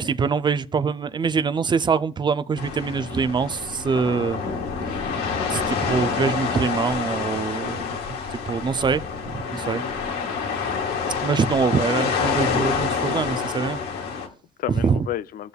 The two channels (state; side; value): normal; both; correlation 0.45